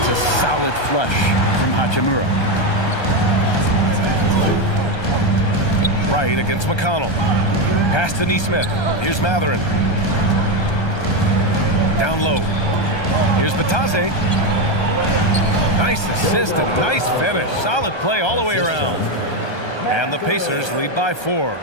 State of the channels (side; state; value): right; late; 1.3 ms